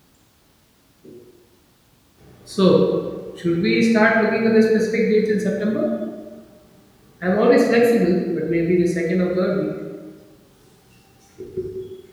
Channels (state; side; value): identical; both; correlation 1.00